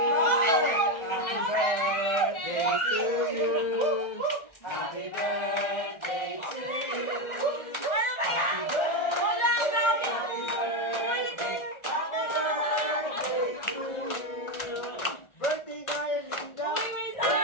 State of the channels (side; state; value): right; late; 1.4 ms